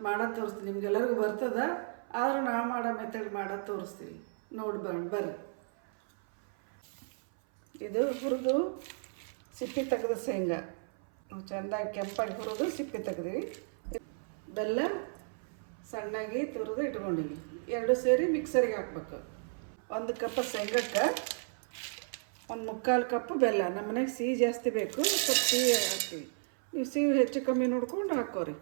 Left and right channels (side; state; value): left; silent; 56 dB below the other